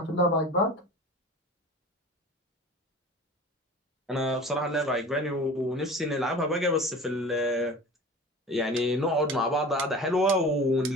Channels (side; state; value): both; normal; correlation 0.38